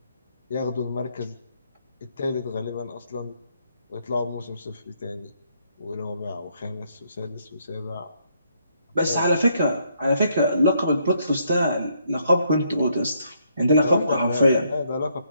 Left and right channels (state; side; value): inverted; both; correlation -0.72